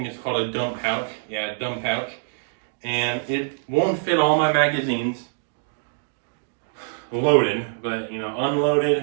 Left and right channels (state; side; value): silent; left; digital silence